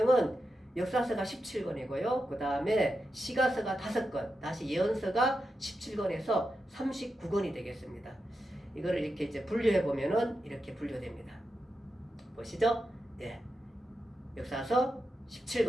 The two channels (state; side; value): normal; both; correlation 0.88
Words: 역사서가 17권이고요. 그 다음에 시가서가 5권, 다시 예언서가 17권에서 39권이 되겠습니다. 이거를 이렇게 이제 분류해 보면은 이렇게 분류됩니다. 보시죠? 예. 역사서